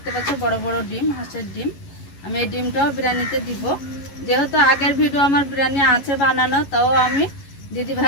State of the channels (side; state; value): right; late; 11 ms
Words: পাচ্ছ বড় বড় ডিম, হাঁসের ডিম। আমি এই ডিমটাও বিরিয়ানিতে দিব, যেহেতু আগের ভিডিও আমার বিরিয়ানি আছে বানানো, তাও আমি দিদি